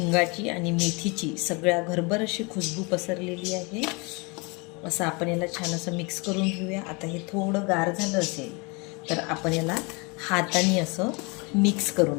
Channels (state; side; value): quieter; right; 29.5 dB